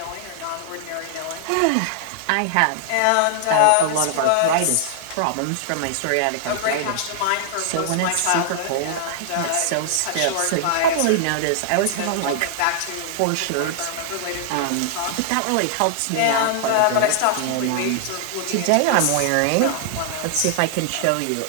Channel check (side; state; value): both; different; correlation -0.01